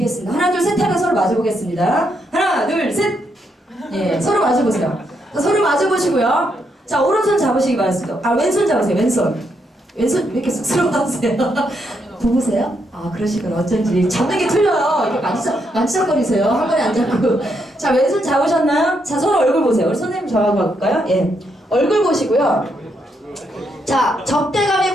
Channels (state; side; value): normal; both; correlation 0.78